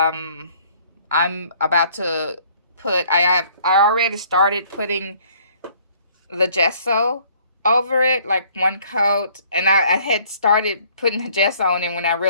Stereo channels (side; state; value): both; inverted; correlation -0.59